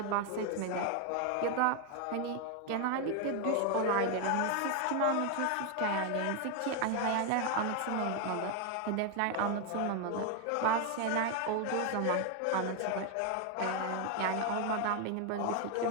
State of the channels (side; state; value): both; different; correlation 0.01